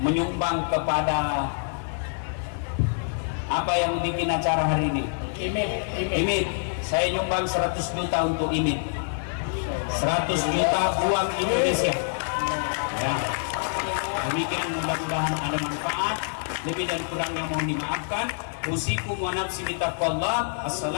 kepada apa yang bikin acara hari ini? Imit. Saya nyumbang 100 juta untuk Imit. 100 juta uang Indonesia. Ya. Demikian, mudah-mudahan ada manfaat. Lebih dan kurangnya mohon dimaafkan. Usikum wa nafsi bitaqwallah.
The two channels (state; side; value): silent; right; 55 dB below the other